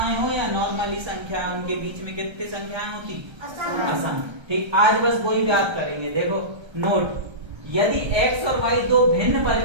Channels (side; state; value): left; late; 1.3 ms